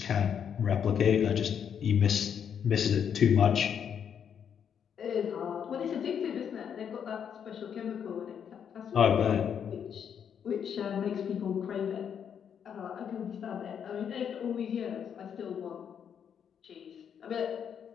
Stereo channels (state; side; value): quieter; right; 8.0 dB